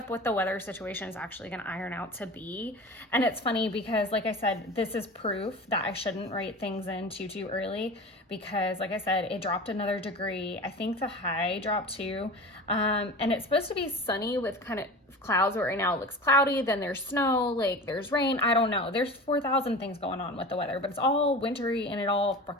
what the weather situation is actually going to iron out to be, and it's funny because like I said, this is proof that I shouldn't write things in too early, because like I said, it dropped another degree. I think the high dropped too. And it's supposed to be sunny with kind of clouds, but right now it looks cloudy, then there's snow, like there's rain. I don't know. There's 4,000 things going on with the weather, but it's all wintry and it all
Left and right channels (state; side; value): normal; both; correlation 0.33